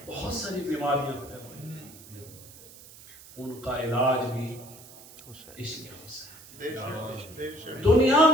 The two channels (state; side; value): noise; right; hiss, 19 dB below the sound